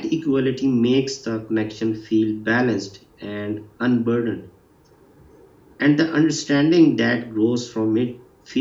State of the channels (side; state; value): both; identical; correlation 1.00